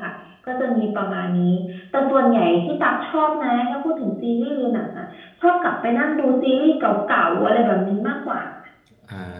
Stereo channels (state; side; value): identical; both; correlation 1.00